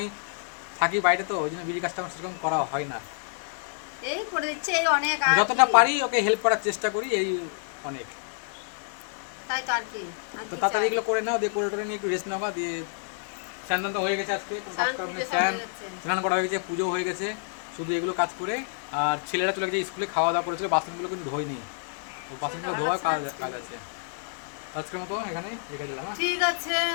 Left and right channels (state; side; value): silent; right; digital silence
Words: থাকি বাইরে, তো ওই জন্য বিড়ির কাজটা আমার সেরকম করা হয় না। এই করে দিচ্ছে, এই অনেক যতটা পারি ওকে হেল্প করার চেষ্টা করি, এই অনেক। তাই তো আর কি, তো তাড়াতাড়ি এগুলো করে নাও, দিয়ে করে টোরে নিয়ে একটু রেস্ট নেওয়া, দিয়ে স্নান তো হয়ে গেছে, আজকে স্নান করা হয়ে গেছে, পুজো হয়ে গেছে, শুধু এগুলো কাজ করে। আর ছেলেরা চলে গেছে স্কুলে, খাওয়া দাওয়া করেছিল, বাসনগুলো কিন্তু ধোয়নি, তো বাসনগুলো ধোয়ার কাজ আছে। আজকের মতো এখানে রেখে দিলাম। ঠিক আছে,